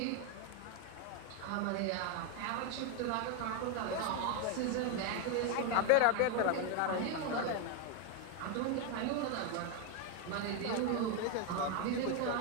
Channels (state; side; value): different; both; correlation 0.01